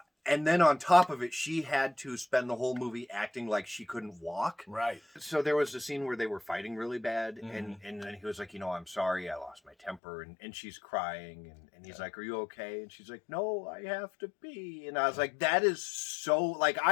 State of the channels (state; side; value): drops out; right; at 10.0 s